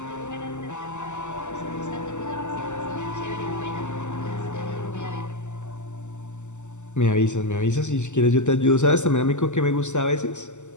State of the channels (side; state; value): right; late; 0.84 ms